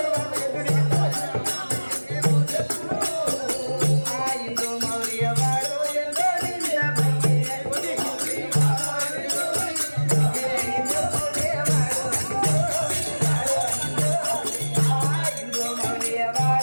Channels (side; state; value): both; inverted; correlation -1.00